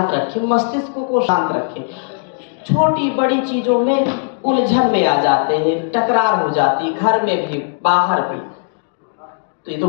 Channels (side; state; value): right; silent; digital silence